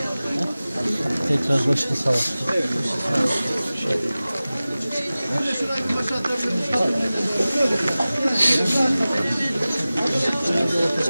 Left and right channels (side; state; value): both; inverted; correlation -0.97